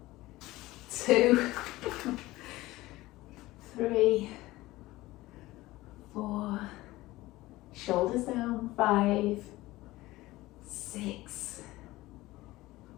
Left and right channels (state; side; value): quieter; right; 18.4 dB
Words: 2, 3, 4, shoulders down. 5, 6,